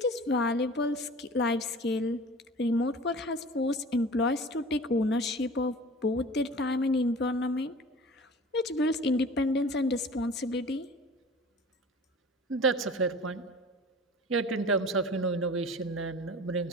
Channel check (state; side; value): normal; both; correlation 0.41